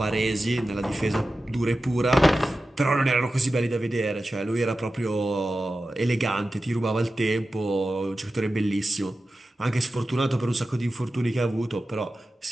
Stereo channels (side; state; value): both; normal; correlation 0.93